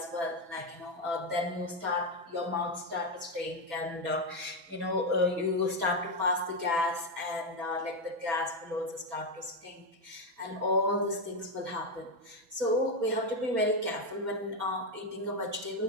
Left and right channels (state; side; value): late; left; 6.0 ms